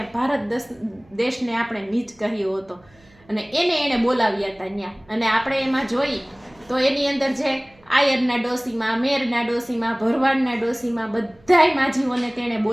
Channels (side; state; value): right; noise; hum, 30 dB below the sound